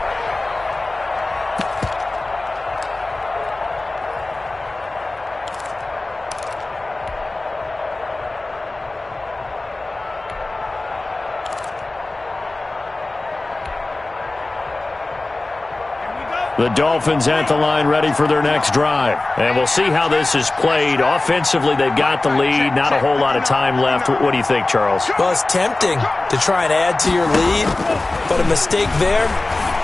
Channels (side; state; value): right; quieter; 3.0 dB